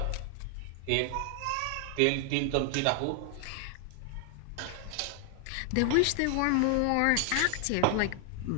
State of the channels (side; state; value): both; different; correlation 0.00